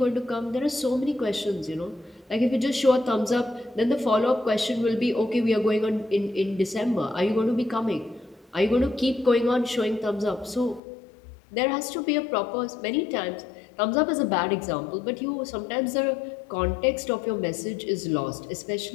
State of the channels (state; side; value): drops out; right; at 10.8 s